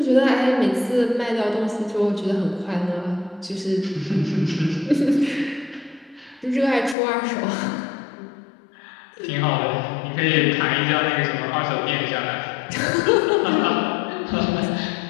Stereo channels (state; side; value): drops out; right; at 7.0 s